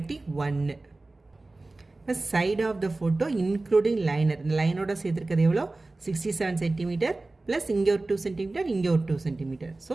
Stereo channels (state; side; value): quieter; left; 3.1 dB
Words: இப்போ side of the photo including liner, இந்த லைனோட சேர்த்துருக்கிறது எவ்வளோ? 67 சென்டிமீட்டர் ப்ளஸ் இங்கே ஒரு 2 சென்டிமீட்டர் இங்கே ஒரு 2 சென்டிமீட்டர். So